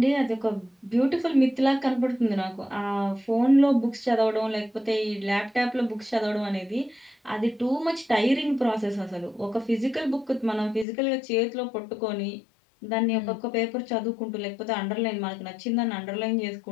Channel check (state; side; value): drops out; right; at 10.9 s